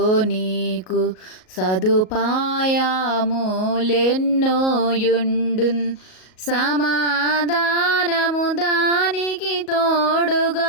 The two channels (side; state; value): right; late; 38 ms